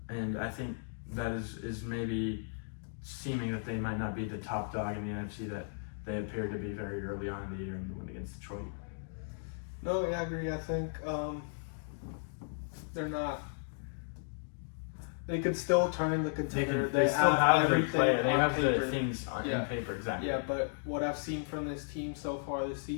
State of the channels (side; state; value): right; silent; digital silence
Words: I think that is maybe seeming that they might not be the top dog in the NFC that they appeared to be very early on in the year in the win against Detroit. No, yeah, I agree. I think they're not. They could still turn the contender. They still have everything player. They on have paper. the things in paper, exactly. Yeah, but what I've seen from this team so far this